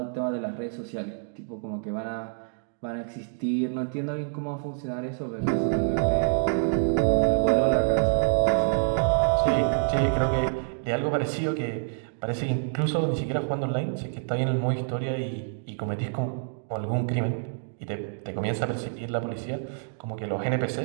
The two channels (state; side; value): silent; left; digital silence